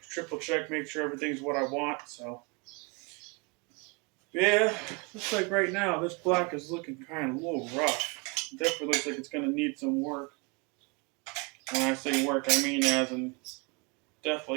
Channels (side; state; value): left; quieter; 30.7 dB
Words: triple check, make sure everything's what I want. So yeah, looks like right now this block is looking kind of a little rough. It definitely looks like it's going to need some work. When I say work, I mean as in